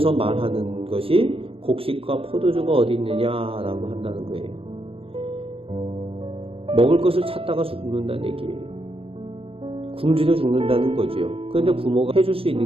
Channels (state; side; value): late; left; 0.27 ms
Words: 말하는 것이 곡식과 포도주가 어디 있느냐라고 한다는 거예요. 먹을 것을 찾다가 죽는다는 얘기예요. 굶주려 죽는다는 거죠. 그런데 부모가 해줄 수